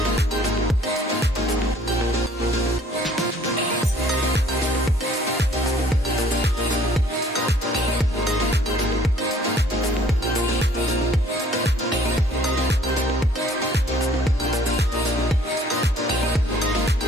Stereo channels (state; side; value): normal; both; correlation 0.57